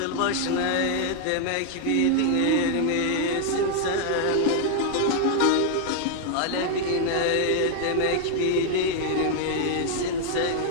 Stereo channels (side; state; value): both; different; correlation 0.00